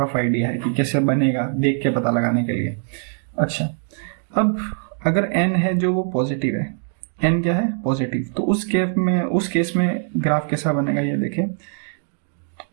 आइडिया है कि कैसे बनेगा, देख के पता लगाने के लिए। अच्छा, अब अगर n है जो वो पॉजिटिव है, n क्या है पॉजिटिव, तो उस केस में ग्राफ कैसा बनेगा ये देखें।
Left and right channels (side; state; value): left; silent; 55 dB below the other